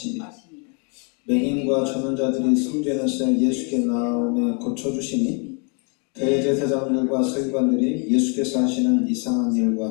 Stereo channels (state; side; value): quieter; right; 37.4 dB